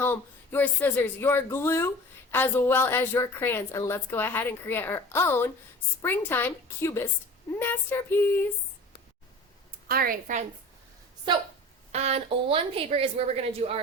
your scissors, your glue, as well as your crayons, and let's go ahead and create our own springtime cubist masterpiece. Alright, friends, so on one paper is where we're going to do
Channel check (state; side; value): normal; both; correlation 0.40